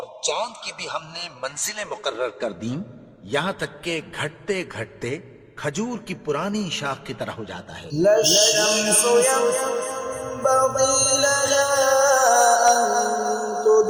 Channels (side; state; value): both; identical; correlation 1.00